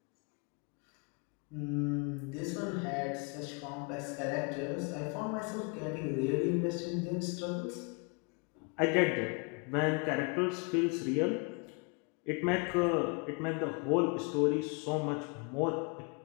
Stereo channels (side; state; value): right; quieter; 32.7 dB